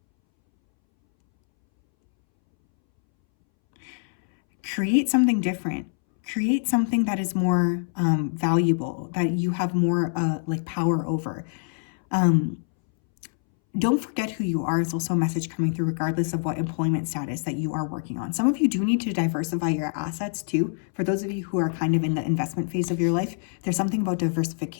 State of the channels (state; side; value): silent; right; 62 dB below the other